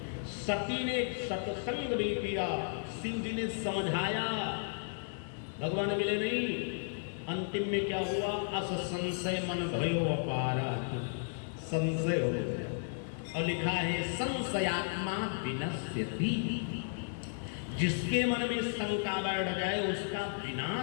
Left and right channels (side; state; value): right; silent; digital silence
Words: सती ने सत्संग भी किया, सिंह जी ने समझाया, भगवान मिले नहीं। अंतिम में क्या हुआ? अस संशय मन भयो अपारा, संशय हो गया। और लिखा है संशयात्मा विनश्यति, जिसके मन में शंका बैठ जाए उसका